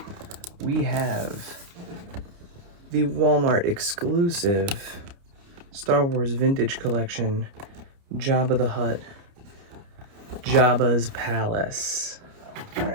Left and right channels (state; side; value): late; left; 29 ms